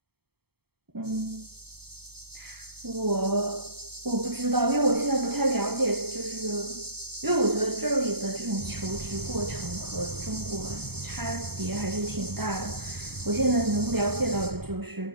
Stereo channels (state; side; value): late; left; 0.96 ms